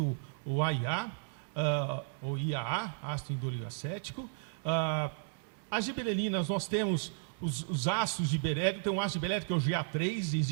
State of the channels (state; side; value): silent; left; digital silence